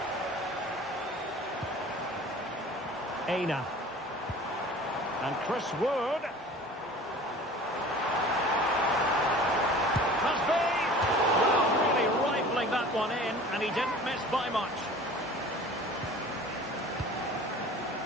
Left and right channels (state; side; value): normal; both; correlation 0.43